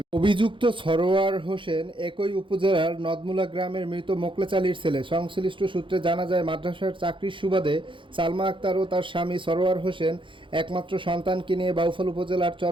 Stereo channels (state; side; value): late; left; 0.24 ms